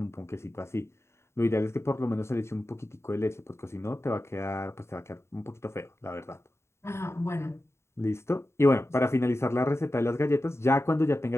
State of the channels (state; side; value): late; right; 0.13 ms